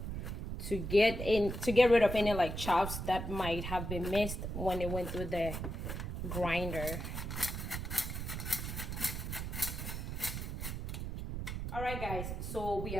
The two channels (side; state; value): right; noise; rumble, 4 dB below the sound